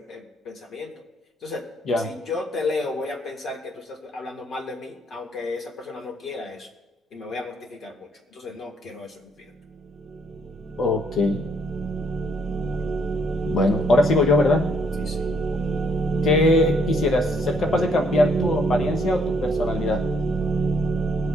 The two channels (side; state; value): both; normal; correlation 0.69